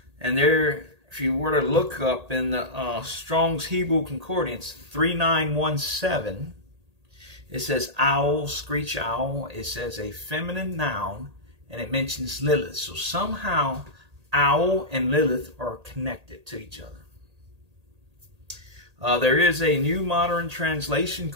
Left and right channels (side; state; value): left; late; 1.8 ms